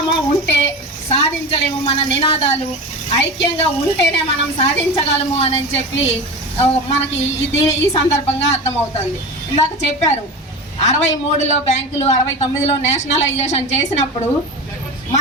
ఉంటే సాధించలేము. మన నినాదాలు ఐక్యంగా ఉంటేనే మనం సాధించగలము అని చెప్పి మనకి ఈ సందర్భంగా అర్థమవుతుంది. ఇందాక చెప్పారు 63లో బ్యాంకులు, 69లో నేషనలైజేషన్ చేసినప్పుడు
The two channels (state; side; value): normal; both; correlation 0.27